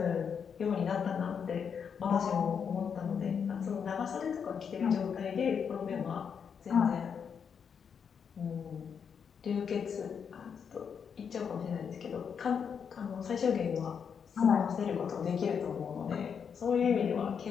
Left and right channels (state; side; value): quieter; right; 6.9 dB